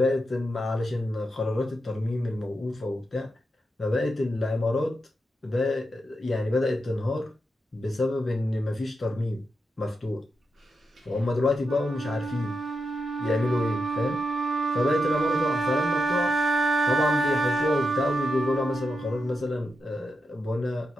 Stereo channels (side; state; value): both; normal; correlation 0.86